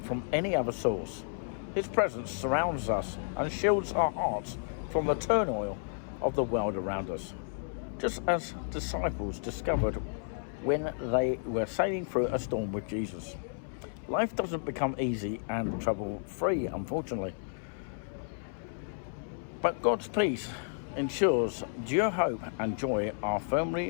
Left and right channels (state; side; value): silent; right; 56 dB below the other